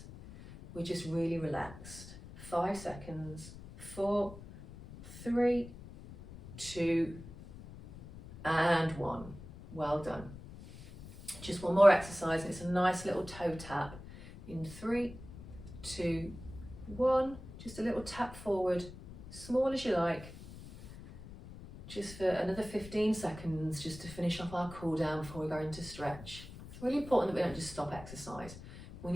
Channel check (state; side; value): noise; left; rumble, 15 dB below the sound